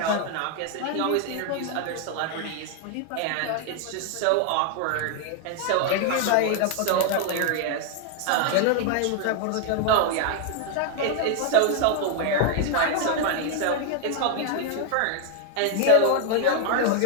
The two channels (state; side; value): different; both; correlation 0.00